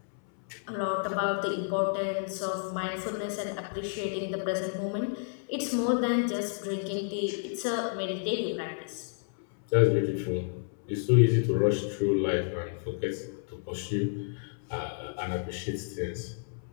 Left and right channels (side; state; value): right; silent; 57 dB below the other